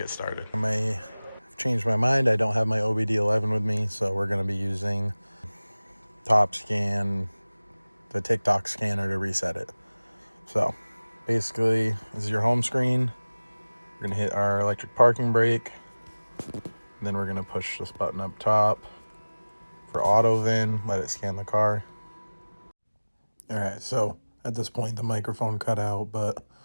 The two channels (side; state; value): both; inverted; correlation -1.00